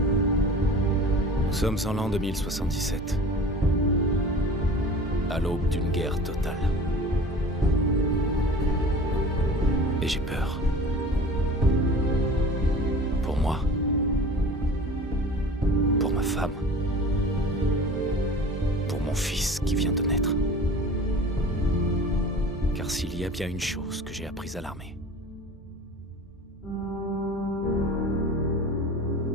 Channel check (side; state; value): both; normal; correlation 0.40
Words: Nous sommes en l'an 2077. À l'aube d'une guerre totale. Et j'ai peur. Pour moi. Pour ma femme. Pour mon fils qui vient de naître. Car s'il y a bien une chose que j'ai apprise à l'armée,